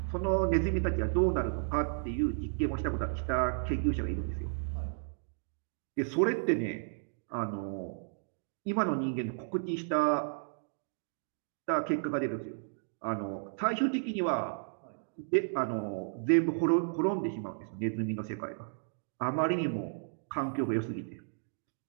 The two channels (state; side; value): silent; left; digital silence